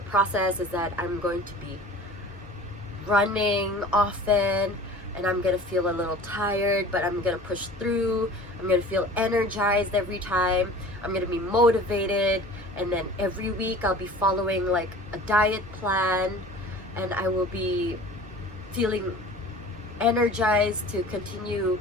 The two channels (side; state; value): both; normal; correlation 0.42